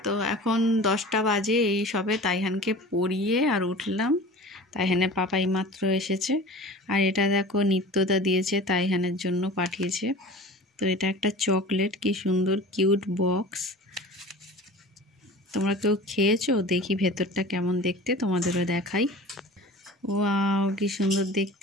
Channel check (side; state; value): both; normal; correlation 0.39